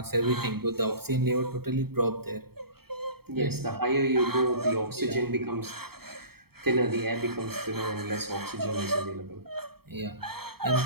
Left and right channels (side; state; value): left; late; 0.95 ms